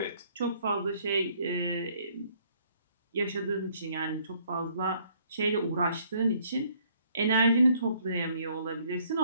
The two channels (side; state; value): both; inverted; correlation -0.64